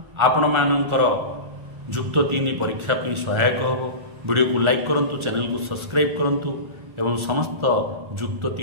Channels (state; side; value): late; left; 1.4 ms